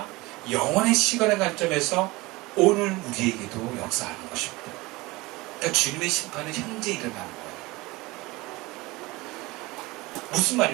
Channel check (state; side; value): quieter; left; 21.7 dB